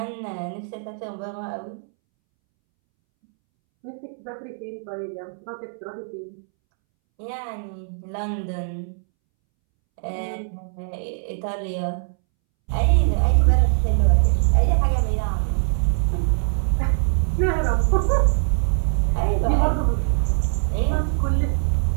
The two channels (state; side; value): silent; left; 64 dB below the other